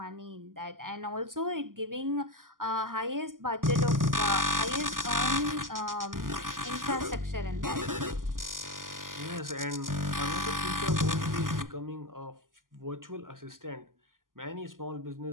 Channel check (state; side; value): late; left; 0.91 ms